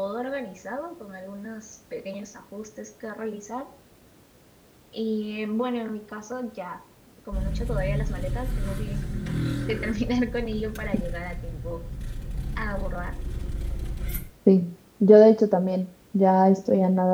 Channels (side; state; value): both; identical; correlation 1.00